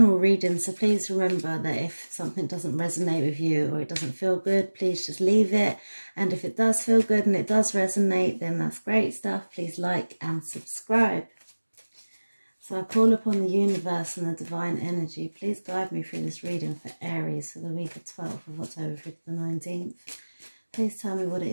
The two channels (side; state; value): both; inverted; correlation -1.00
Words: readings, so please remember that if something doesn't resonate with you or it doesn't feel good, please just leave it. And if it does feel good and it does resonate, then that's great stuff. Please like and subscribe. So I call upon the universe and the divine energy. Please guide me through this reading for Aries for the week of 12th of October through to the 19th. Please tell me what it